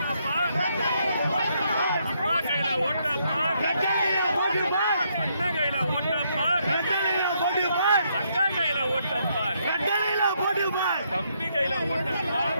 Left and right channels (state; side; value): inverted; both; correlation -0.74